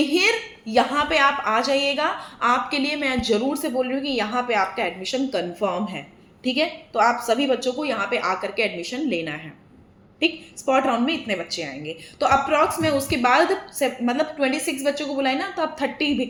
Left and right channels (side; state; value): both; identical; correlation 1.00